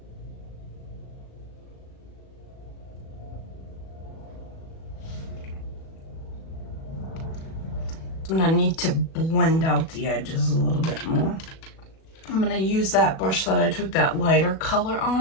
I'm gonna need to blend out the edges a little bit more. I'm gonna use that brush that I took that lighter color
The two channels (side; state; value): right; late; 37 ms